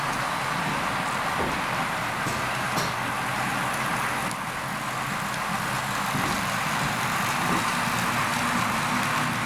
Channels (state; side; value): identical; both; correlation 1.00